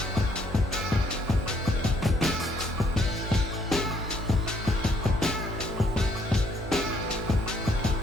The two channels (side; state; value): both; normal; correlation 0.68